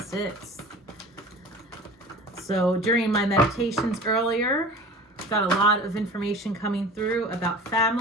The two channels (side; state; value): both; normal; correlation 0.40